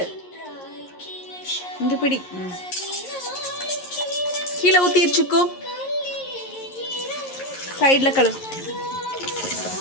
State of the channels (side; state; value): right; late; 11 ms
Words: இங்கே பிடி. கீழே ஊற்றிடுச்சுக்கோ. சைடில் கழுவு.